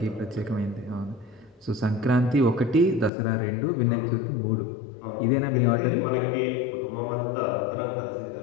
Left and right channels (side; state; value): right; drops out; at 3.1 s